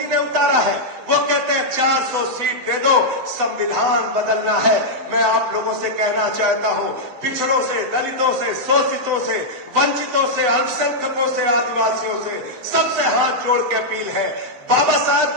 ने उतारा है, वो कहते हैं 400 सीट दे दो, संविधान बदलना है। मैं आप लोगों से कहना चाहता हूं, पिछड़ों से, दलितों से, शोषितों से, वंचितों से, अल्पसंख्यकों से, आदिवासियों से, सबसे हाथ जोड़ के अपील है, बाबा साहब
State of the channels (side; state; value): left; late; 11 ms